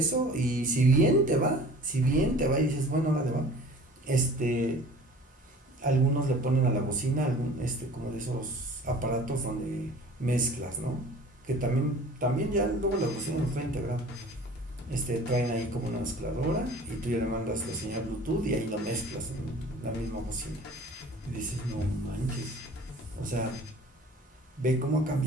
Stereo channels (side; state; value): both; normal; correlation 0.46